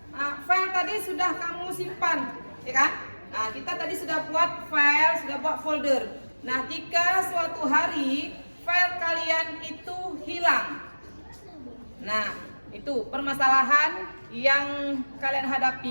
file tadi sudah kamu simpan, ya kan? Nah, kita tadi sudah buat file, sudah buat folder. Nah, jika suatu hari file kalian itu hilang. Nah, itu permasalahan yang kalian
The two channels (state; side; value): inverted; both; correlation -1.00